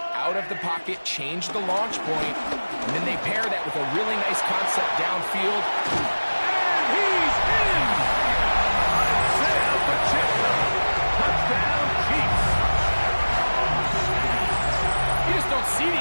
out of the pocket, change the launch point, and then they pair that with a really nice concept downfield. And he's in! Isaiah Pacheco. Touchdown, Chiefs. You just don't see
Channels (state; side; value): inverted; both; correlation -1.00